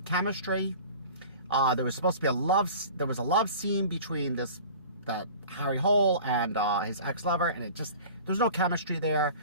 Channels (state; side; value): inverted; both; correlation -0.42